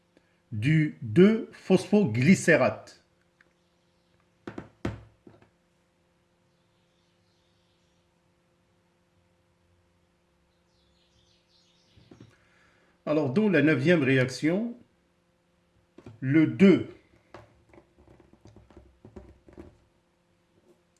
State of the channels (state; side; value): identical; both; correlation 1.00